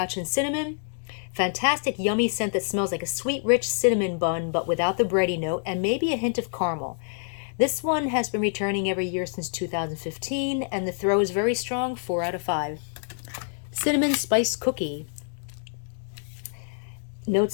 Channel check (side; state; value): right; silent; digital silence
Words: and cinnamon. Fantastic, yummy scent that smells like a sweet, rich cinnamon bun, but without the bready note, and maybe a hint of caramel. This one has been returning every year since 2015, and the throw is very strong, 4 out of 5. Cinnamon Spice Cookie.